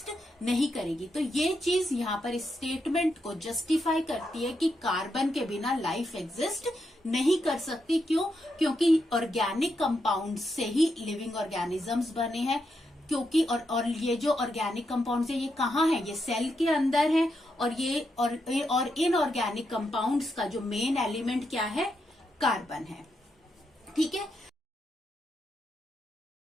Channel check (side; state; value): both; normal; correlation 0.83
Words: नहीं करेगी। तो ये चीज यहाँ पर इस स्टेटमेंट को जस्टिफाई करती है कि कार्बन के बिना लाइफ एग्जिस्ट नहीं कर सकती। क्यों? क्योंकि ऑर्गेनिक कंपाउंड्स से ही लिविंग ऑर्गेनिजम्स बने हैं। क्योंकि और ये जो ऑर्गेनिक कंपाउंड्स है ये कहाँ है? ये सेल के अंदर है, और ये और इनऑर्गेनिक कंपाउंड्स का जो मेन एलिमेंट क्या है? कार्बन है। ठीक है,